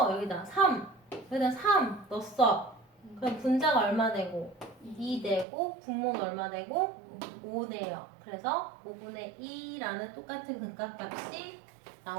여기다 3 여기다 3 넣었어. 그럼 분자가 얼마 되고 2 되고 분모는 얼마 되고 5 돼요. 그래서 5분의 2라는 똑같은 극각값이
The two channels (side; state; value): left; drops out; at 5.5 s